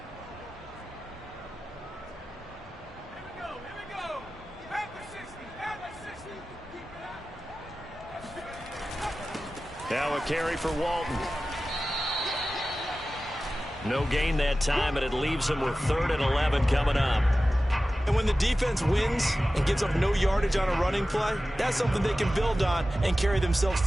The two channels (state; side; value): normal; both; correlation 0.95